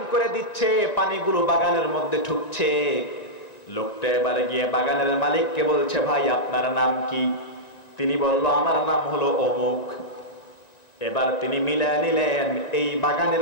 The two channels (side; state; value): right; late; 1.9 ms